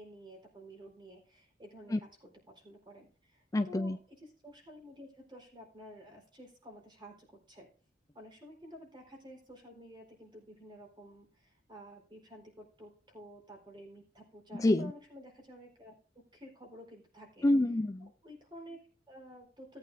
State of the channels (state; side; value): normal; both; correlation 0.90